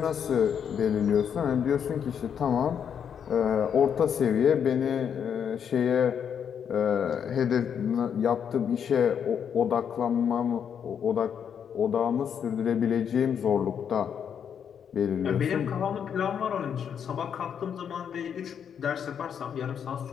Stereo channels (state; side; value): quieter; right; 7.9 dB